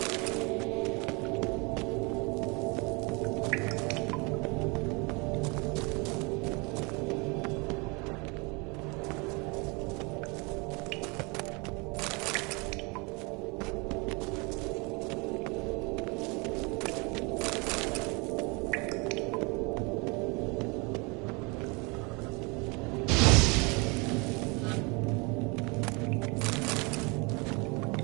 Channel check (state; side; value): quieter; left; 29.4 dB